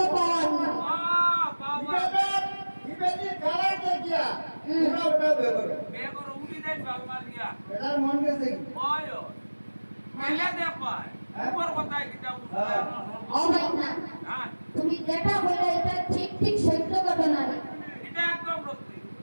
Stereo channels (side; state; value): both; inverted; correlation -1.00